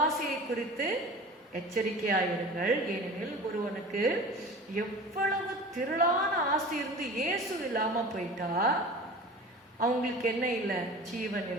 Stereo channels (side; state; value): both; normal; correlation 0.38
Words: குறித்து எச்சரிக்கையாயிருங்கள். ஏனெனில் ஒருவனுக்கு எவ்வளவு திரளான ஆஸ்தி இருந்து இயேசு இல்லாம போயிட்டா அவங்களுக்கு என்ன இல்லை? ஜீவன்